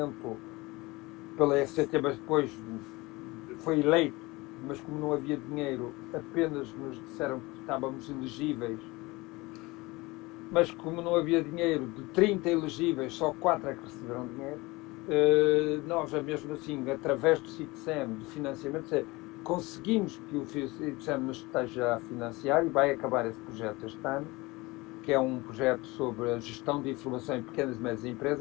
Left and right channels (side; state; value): right; quieter; 22.6 dB